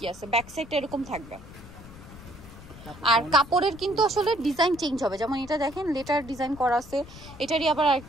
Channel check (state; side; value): noise; left; rumble, 17 dB below the sound